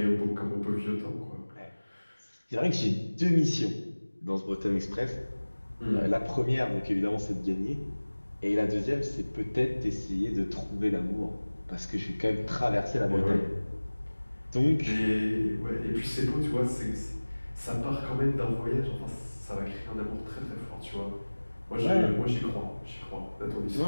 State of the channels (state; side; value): inverted; both; correlation -1.00